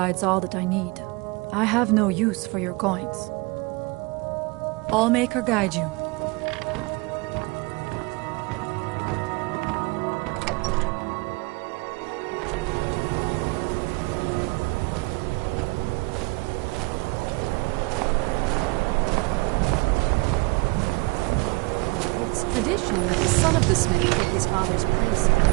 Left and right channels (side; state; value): left; quieter; 26.3 dB